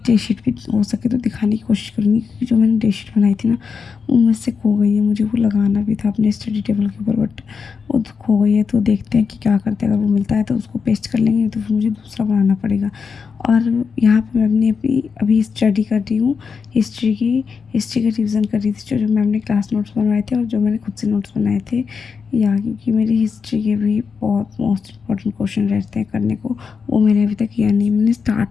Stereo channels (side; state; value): right; quieter; 5.7 dB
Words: डे शीट भी हो सके तो दिखाने की कोशिश करूँगी, क्योंकि जो मैंने डे शीट बनाई थी ना, वो मुझसे खो गई है। मुझे वो लगाना भी था अपने स्टडी टेबल के ऊपर, बट वो तो खो गई है। तो देखते हैं कि क्या करते हैं। अगर वो मिलता है तो उसको पेस्ट कर लेंगे, तो फिर मुझे दूसरा बनाना पड़ेगा। और यहाँ पे मैं अपनी अभी स्टडी कर रही हूँ हिस्ट्री का रिवीजन कर रही थी, जो मैम ने क्लास नोट्स बनवाए थे और जो मैंने खुद से नोट्स बनाए थे। या क्योंकि मेरी हिस्ट्री के भी बहुत मोस्ट इंपॉर्टेंट क्वेश्चन रहते हैं करने को, वो मैंने अभी तक किया नहीं। मैंने